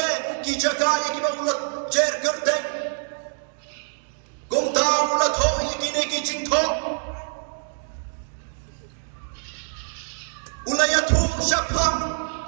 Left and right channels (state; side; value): silent; left; 57 dB below the other